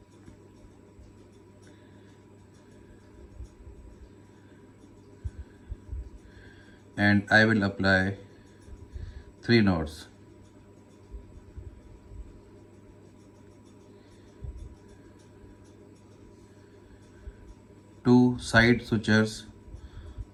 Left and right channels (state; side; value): identical; both; correlation 1.00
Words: And I will apply 3 knots. Two side sutures